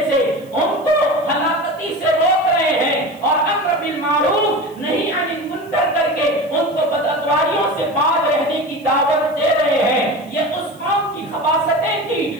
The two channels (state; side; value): noise; right; hiss, 28 dB below the sound